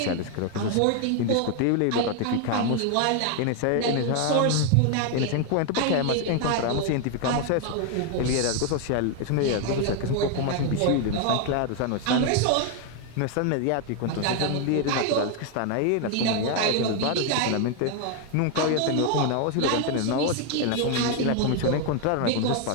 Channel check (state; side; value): different; both; correlation 0.01